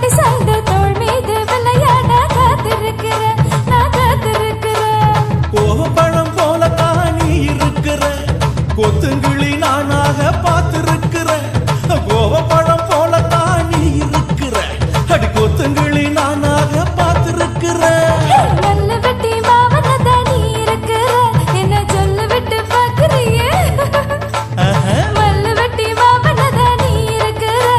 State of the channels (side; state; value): both; identical; correlation 1.00